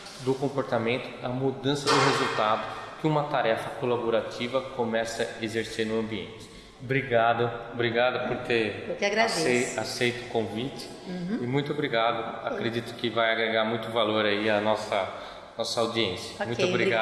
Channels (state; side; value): identical; both; correlation 1.00